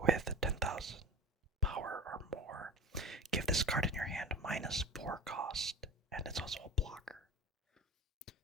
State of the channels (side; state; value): both; normal; correlation 0.32